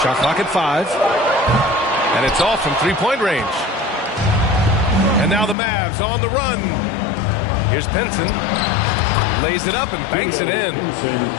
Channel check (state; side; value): drops out; right; at 5.6 s